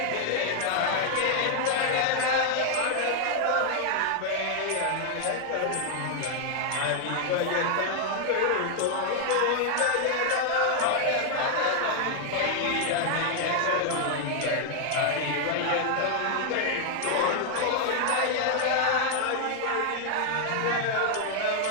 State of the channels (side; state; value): both; different; correlation 0.00